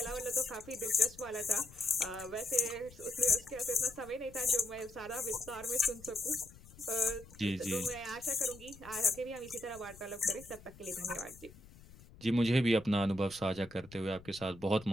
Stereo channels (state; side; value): noise; left; rumble, 20 dB below the sound